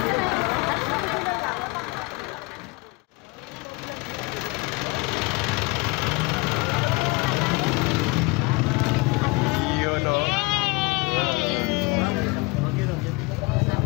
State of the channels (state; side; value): quieter; right; 25.7 dB